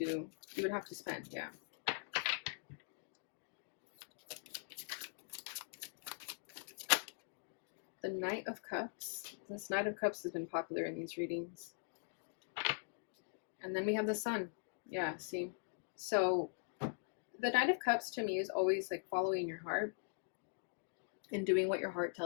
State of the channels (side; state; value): right; silent; digital silence